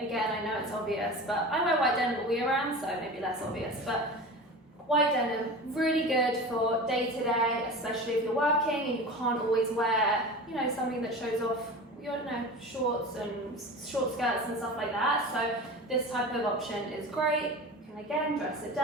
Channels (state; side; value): normal; both; correlation 0.32